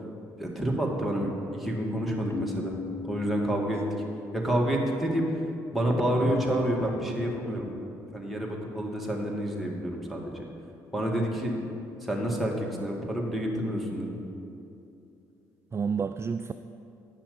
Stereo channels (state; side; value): normal; both; correlation 0.76